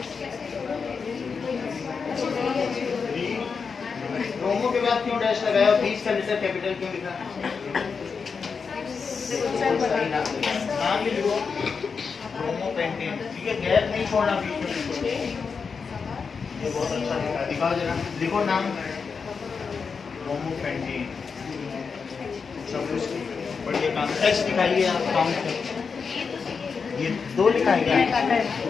ब्रोमो के बाद क्यों डैश लगाया? 20 का लेटर कैपिटल क्यों लिखा? नाम भी लिखो, ब्रोमो पेंटेन, ठीक है, गैप नहीं छोड़ना बीच में बिल्कुल। ये बहुत अच्छा लिखा, दिखाओ जरा, लिखो नाम, ब्रोमो पेंटेन, सब कुछ बढ़िया काम। एच दिखाइए आप, काउंट कर, ये 2 लिखा है क्या?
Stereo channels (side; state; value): right; quieter; 5.5 dB